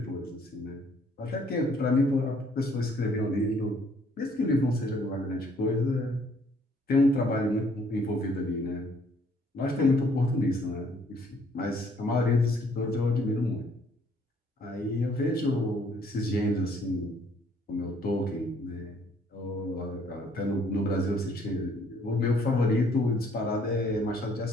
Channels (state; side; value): normal; both; correlation 0.63